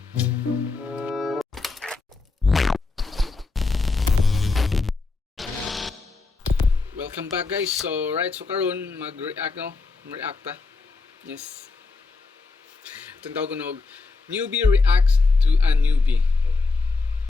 back guys. So karon mag-react no, reacta. Yes. Itong tawag ko newbie reacts to a newbie.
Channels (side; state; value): right; quieter; 3.9 dB